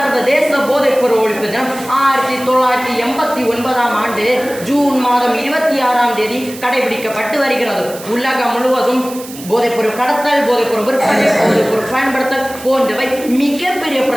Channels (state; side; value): noise; right; hiss, 15 dB below the sound